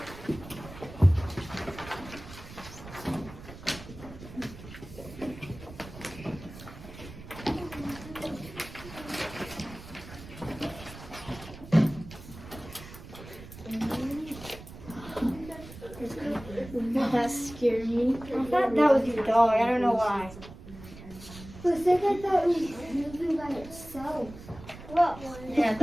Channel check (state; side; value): noise; right; rumble, 15 dB below the sound